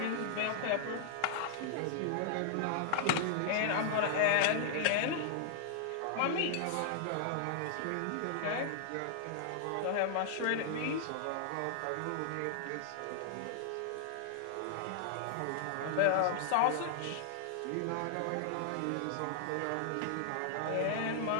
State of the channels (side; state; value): both; different; correlation -0.01